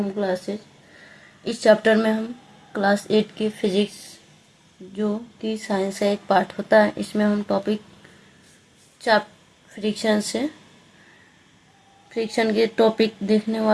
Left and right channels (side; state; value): both; identical; correlation 1.00